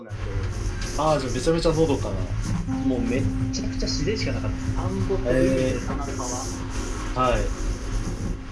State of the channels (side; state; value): both; identical; correlation 1.00